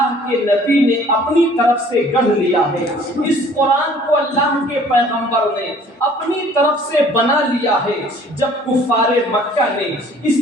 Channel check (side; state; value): both; normal; correlation 0.54